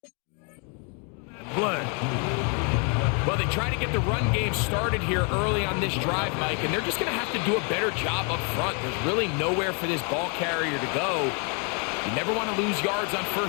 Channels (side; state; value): right; quieter; 37.0 dB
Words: Play. Well, they try to get the run game started here early on this drive, Mike, and they're just going to have to do a better job up front. There's really nowhere for this ball carrier to go. You never want to lose yards on